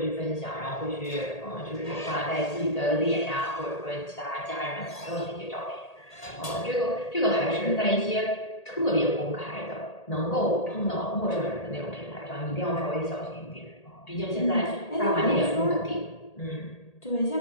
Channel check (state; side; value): late; right; 1.8 ms